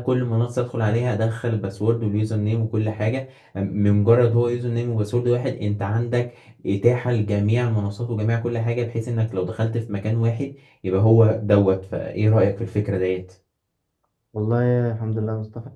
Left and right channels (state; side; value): identical; both; correlation 1.00